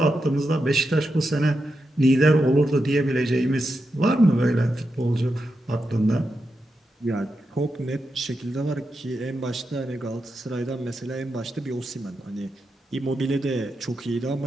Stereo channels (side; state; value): both; normal; correlation 0.87